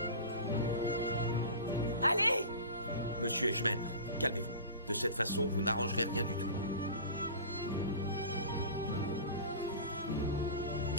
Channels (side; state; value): both; inverted; correlation -0.36